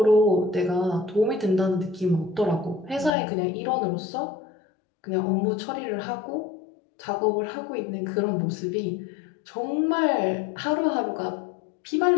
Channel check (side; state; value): right; drops out; at 3.2 s